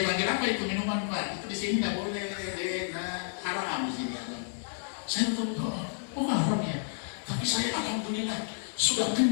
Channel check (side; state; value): right; silent; digital silence